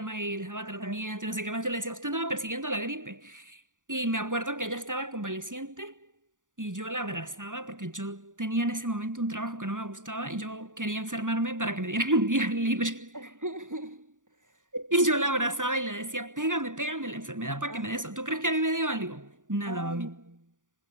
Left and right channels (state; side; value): late; left; 0.88 ms